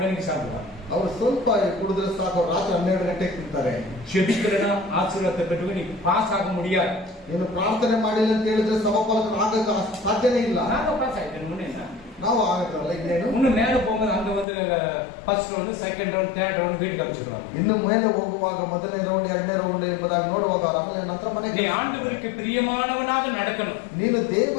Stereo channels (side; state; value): right; drops out; at 14.5 s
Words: மணிக்கு சாப்பிடுவாங்க. ಅವ್ರು ಸ್ವಲ್ಪ ಕುಡಿದ್ರೆ ಸಾಕು, ರಾತ್ರಿ 12 ಗಂಟೆಗೆ ತಿಂತಾರೆ. ஜெபிக்கிறனா ஆசீர்வாதத்தை பெற்று நீ பாஸ் ஆக முடியாது. ನೀನು ಪ್ರಾರ್ಥನೆ ಮಾಡಿಲ್ಲ ಅಂತ ಹೇಳಿದ್ರೆ ಸಮಫಲಕ ಆಗಕ್ಕೆ ಸಾಧ್ಯನೇ ಇಲ್ಲ. நாங்க பாஸ் ஆயிட்டேன், முன்னே ನಾವು ಆಗಿದ್ರಲ್ಲ, ಇನ್ನೇನು இன்னும் மேல போகும்போது அங்க வந்து first round, second second round third round வீட்டுக்கு அனுப்பிச்சிடுவாங்க. ಇನ್ನು ಮೇಲೆ ಹೋಗುವಾಗ ಮೊದಲನೇ ರೌಂಡ್ ಎರಡನೇ ರೌಂಡ್ ಎಂಬುದಾಗಿ ನೋಡುವಾಗ ಆಮೇಲೆ ನಂತರ நீ ಮನೆಗೆ ஆண்டவருக்கு பிரியமானவனாக நடக்கணும். ನೀನು